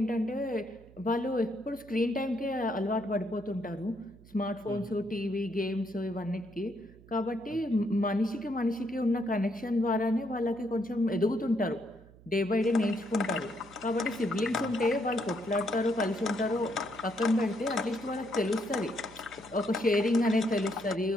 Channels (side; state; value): right; noise; hum, 23 dB below the sound